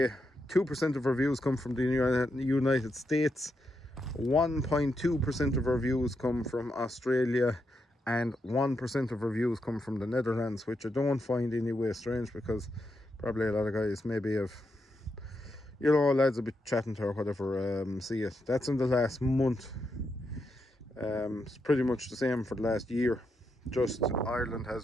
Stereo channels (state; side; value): normal; both; correlation 0.83